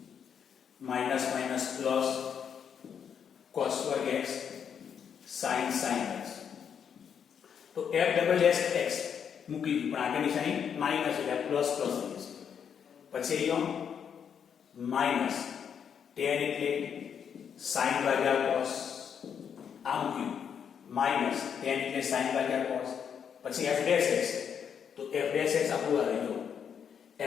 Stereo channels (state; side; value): quieter; right; 7.7 dB